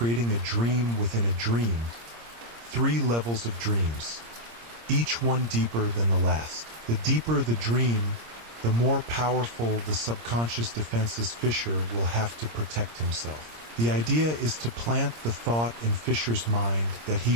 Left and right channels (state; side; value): late; left; 26 ms